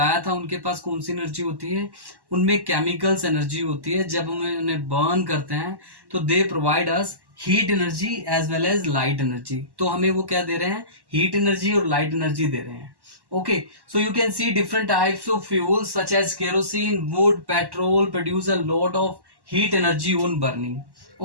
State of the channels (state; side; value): late; left; 1.1 ms